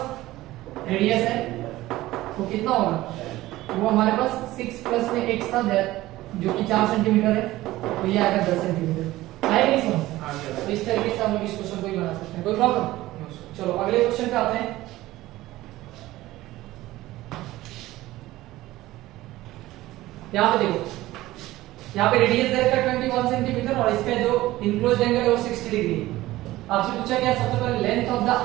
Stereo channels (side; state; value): left; quieter; 16.9 dB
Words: रेडियस है वो कितना होगा, वो हमारे पास 6 प्लस में x था जो कि 4 सेंटीमीटर है, तो ये आएगा 10 सेंटीमीटर। आएगा नहीं समझ? तो इस तरीके से हम लोग इस क्वेश्चन को ही बना सकते हैं, कोई प्रॉब्लम? चलो अगले क्वेश्चन पे आते हैं। यहाँ पे देखो, यहाँ पे रेडियस दे रखा है 21 सेंटीमीटर और इसका जो इनक्लोज्ड एंगल है वो 60 डिग्री है। आपसे पूछा गया सबसे पहले लेंथ ऑफ द